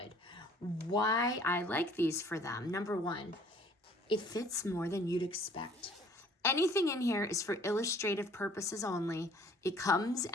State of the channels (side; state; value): both; normal; correlation 0.55